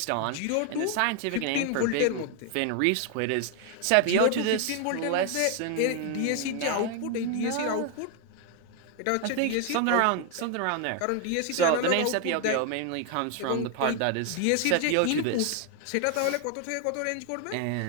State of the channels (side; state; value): both; different; correlation 0.01